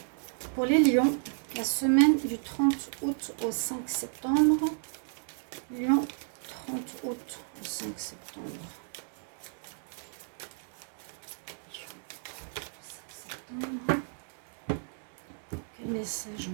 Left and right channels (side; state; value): left; silent; 56 dB below the other